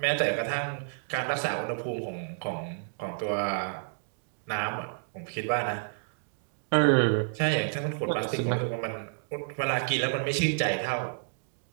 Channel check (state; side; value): silent; left; digital silence